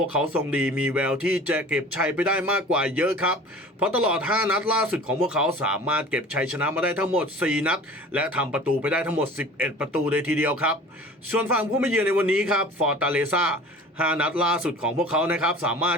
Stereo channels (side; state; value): both; normal; correlation 0.42